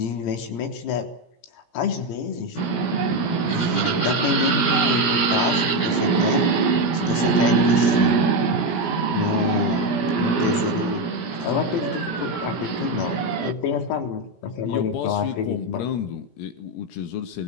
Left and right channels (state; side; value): late; right; 17 ms